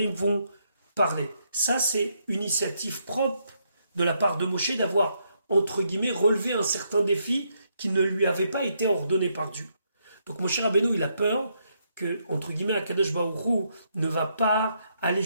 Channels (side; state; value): both; inverted; correlation -0.76